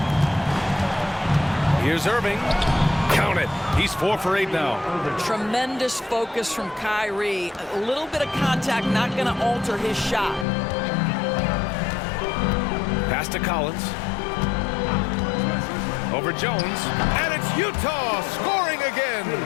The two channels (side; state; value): right; drops out; at 10.5 s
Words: Here's Irving. Count it. He's 4 for 8 now. Tremendous focus from Kyrie. A little bit of contact not going to alter his shot. Pass to Collins. Over Jones. And it's Utah scoring again.